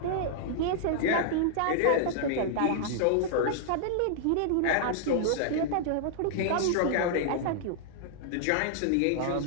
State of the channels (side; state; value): both; different; correlation -0.01